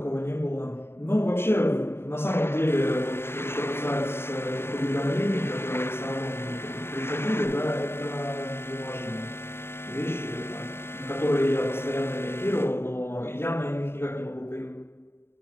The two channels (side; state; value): right; late; 0.11 ms